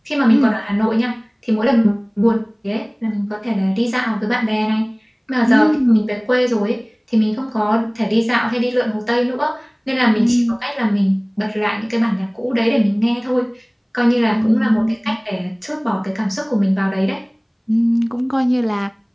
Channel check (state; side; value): identical; both; correlation 1.00